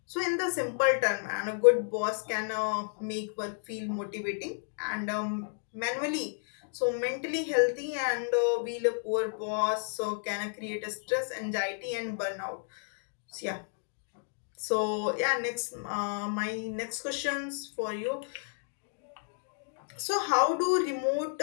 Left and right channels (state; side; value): silent; right; digital silence